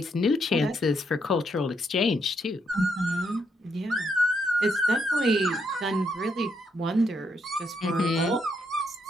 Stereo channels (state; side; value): normal; both; correlation 0.77